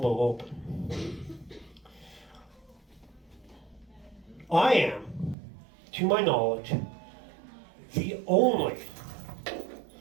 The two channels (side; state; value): left; drops out; at 5.4 s